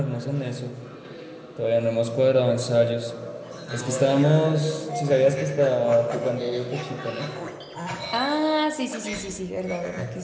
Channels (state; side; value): identical; both; correlation 1.00